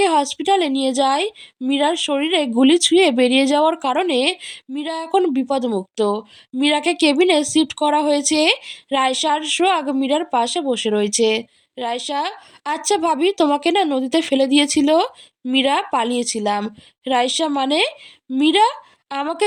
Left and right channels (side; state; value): both; identical; correlation 1.00